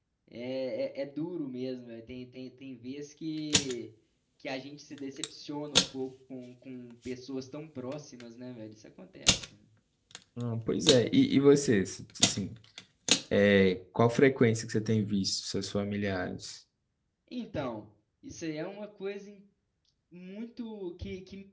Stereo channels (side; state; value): both; identical; correlation 1.00